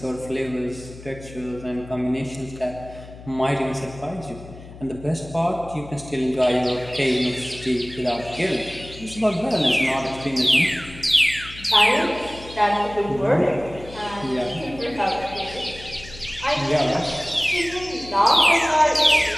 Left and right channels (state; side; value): noise; left; hum, 17 dB below the sound